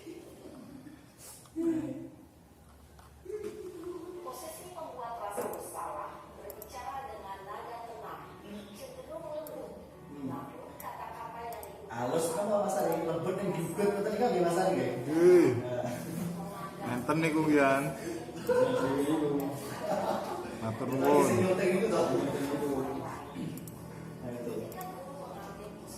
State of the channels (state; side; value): identical; both; correlation 1.00